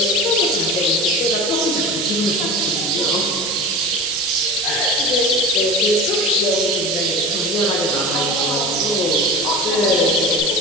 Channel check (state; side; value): noise; right; hiss, 4 dB below the sound